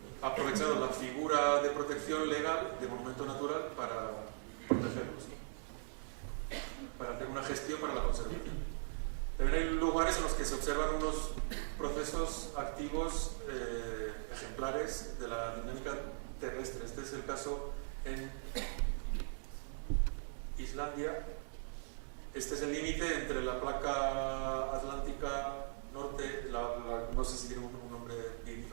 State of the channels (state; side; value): silent; left; digital silence